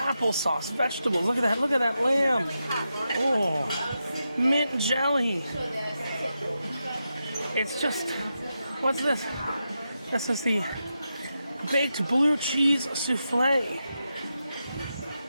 vegetables. Look at that lamb. Oh, mint jelly. It's just, what's this? This is the baked blue cheese souffle.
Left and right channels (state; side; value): inverted; both; correlation -0.88